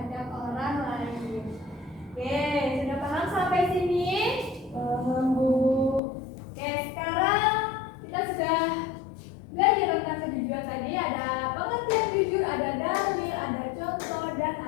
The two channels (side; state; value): right; drops out; at 6.0 s